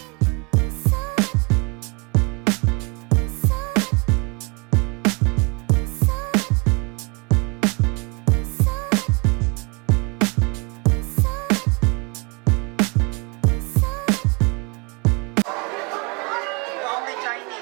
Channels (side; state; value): left; quieter; 30.7 dB